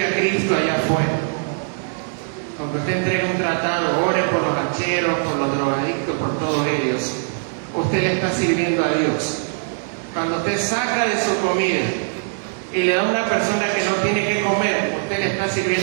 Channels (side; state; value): left; silent; 65 dB below the other